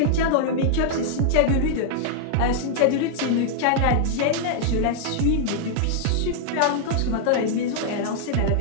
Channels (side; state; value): both; different; correlation -0.01